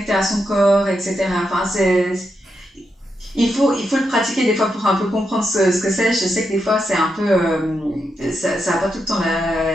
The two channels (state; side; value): normal; both; correlation 0.84